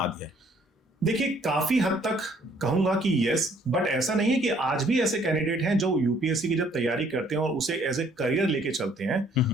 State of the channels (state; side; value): normal; both; correlation 0.62